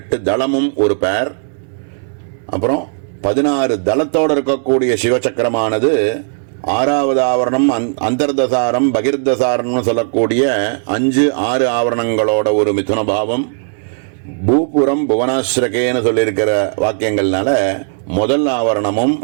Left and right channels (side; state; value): left; silent; digital silence